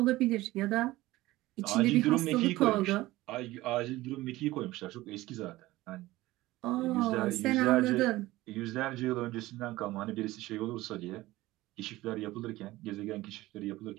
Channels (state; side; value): quieter; left; 18.0 dB